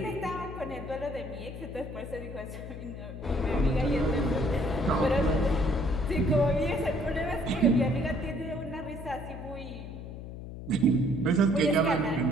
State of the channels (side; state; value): left; noise; hum, 10 dB below the sound